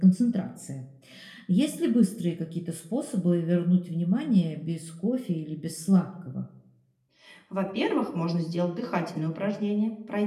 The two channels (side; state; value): both; identical; correlation 1.00